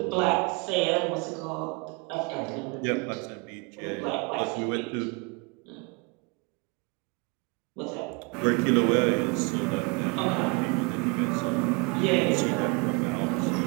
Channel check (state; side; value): quieter; left; 30.1 dB